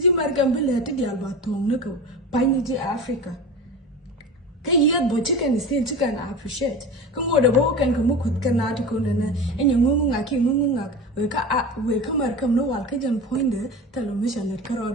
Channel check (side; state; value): both; normal; correlation 0.30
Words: Markham will let the Albatom, Nico, Piney Africa. Can you but chicken is still chicken appreciate? Come over the walk and come with Canatico and your mungaki mungak. We come no Alcajan pointer, tell a mission at Carol,